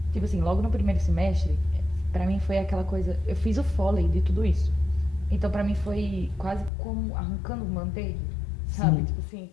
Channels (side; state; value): right; drops out; at 6.7 s